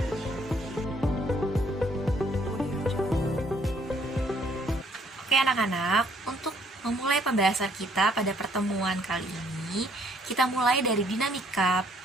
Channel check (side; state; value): both; normal; correlation 0.65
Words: Oke anak-anak, untuk memulai pembahasan kita pada pertemuan kali ini, kita mulai dari dinamika